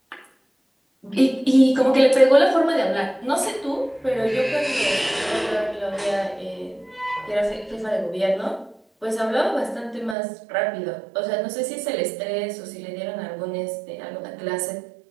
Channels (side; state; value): left; drops out; at 10.2 s